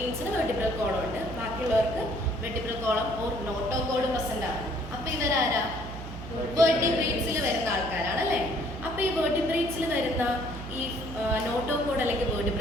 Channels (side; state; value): right; noise; hum, 10 dB below the sound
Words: വെർട്ടിബ്രൽ കോളം ഉണ്ട്, ബാക്കിയുള്ളവർക്ക് vertebral column or notochord present ആണ്. അപ്പൊ ഇവരാരാ? വെർട്ടിബ്രേറ്റ്സിൽ വരുന്ന ആൾക്കാരാണ് അല്ലേ? അപ്പൊ ഈ വെർട്ടിബ്രേറ്റ്സിൽ വരുന്ന ഈ നോട്ടോകോഡ് അല്ലെങ്കിൽ